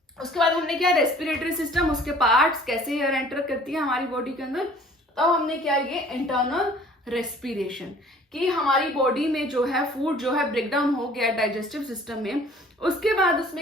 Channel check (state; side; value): normal; both; correlation 0.51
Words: उसके बाद हमने किया रेस्पिरेटरी सिस्टम, उसके पार्ट्स, कैसे एयर एंटर करती है हमारी बॉडी के अंदर। तब हमने किया ये इंटरनल रेस्पिरेशन, कि हमारी बॉडी में जो है फूड जो है ब्रेकडाउन हो गया डाइजेस्टिव सिस्टम में, उसके बाद